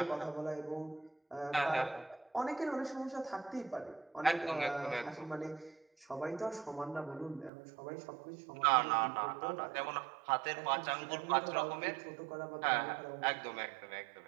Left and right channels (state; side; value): drops out; left; at 7.5 s